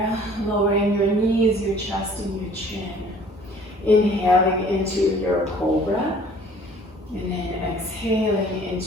lowering your knees, your chest, and your chin. Inhaling into your cobra, and then exhaling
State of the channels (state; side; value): normal; both; correlation 0.52